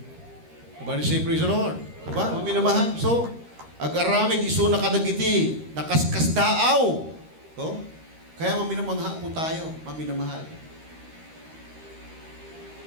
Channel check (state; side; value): late; left; 13 ms